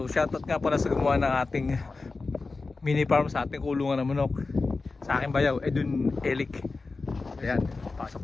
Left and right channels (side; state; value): right; quieter; 3.8 dB